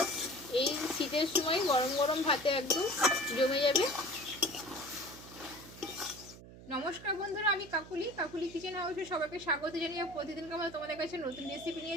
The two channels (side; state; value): right; noise; hum, 17 dB below the sound